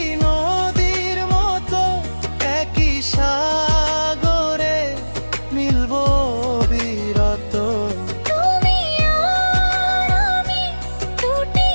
নদীর মতো, একই সাগরে মিলবো বিরত। তুমি আর আমি দুটি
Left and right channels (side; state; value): both; inverted; correlation -1.00